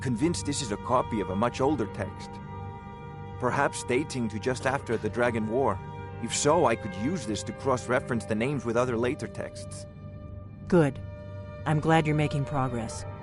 this is a copy of a much older text. Perhaps dating to just after the Dragon War. If so, I could use this to cross-reference the names with other later texts. Good. I'm glad you're making progress.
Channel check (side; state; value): both; identical; correlation 1.00